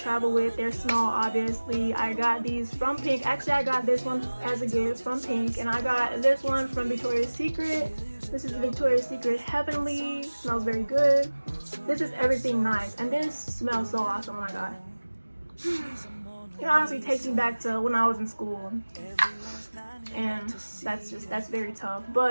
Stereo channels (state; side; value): inverted; both; correlation -1.00